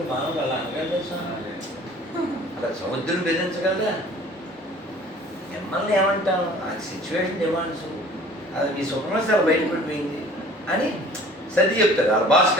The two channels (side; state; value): both; normal; correlation 0.49